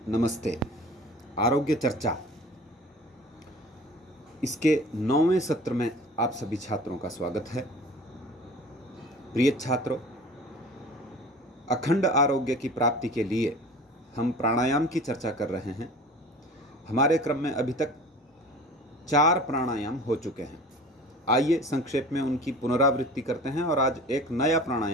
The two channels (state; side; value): normal; both; correlation 0.42